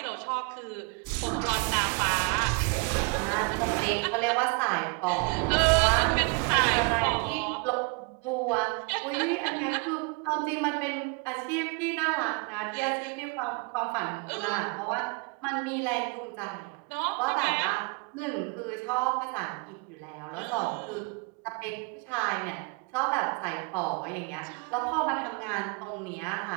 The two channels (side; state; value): left; quieter; 31.8 dB